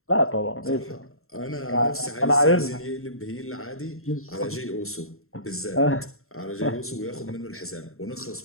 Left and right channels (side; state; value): right; late; 0.62 ms